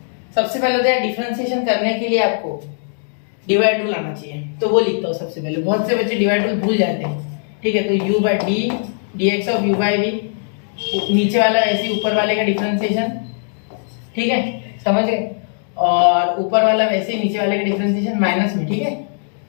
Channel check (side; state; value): right; silent; digital silence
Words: सबसे पहले तो डिफरेंशिएशन करने के लिए आपको डिवाइड रूल आना चाहिए, तो वो लिखता हूँ सबसे पहले। बहुत से बच्चे डिवाइड रूल भूल जाते हैं। ठीक है, तो u by d dx of u by v, नीचे वाला ऐसे ऊपर वाले का डिफरेंशिएशन, ठीक है समझ गए, और ऊपर वाला वैसे ही नीचे वाले का डिफरेंशिएशन माइनस में। ठीक है,